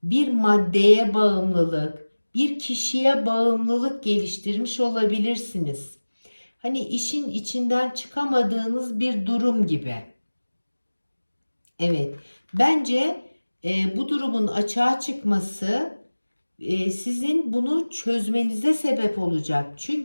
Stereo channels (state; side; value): inverted; both; correlation -1.00